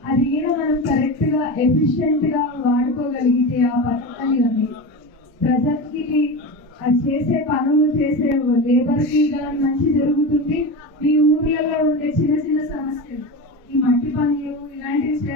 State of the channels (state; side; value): normal; both; correlation 0.24